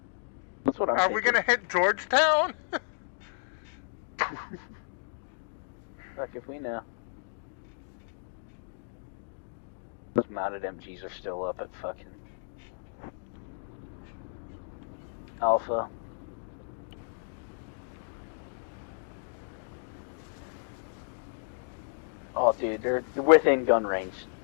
That's what I'm Are thinking. we gonna hit Georgetown? Fuck if we know. Those mounted MGs are still up at fucking Alpha. Oh, dude, they're within gun range.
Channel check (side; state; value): right; silent; digital silence